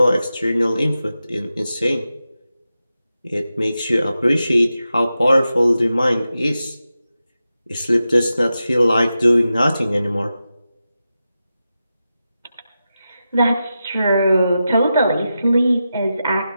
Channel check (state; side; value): inverted; both; correlation -0.91